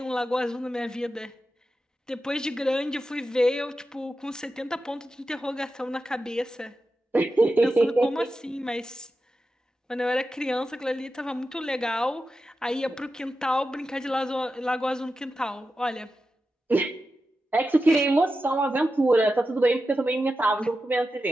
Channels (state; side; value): normal; both; correlation 0.91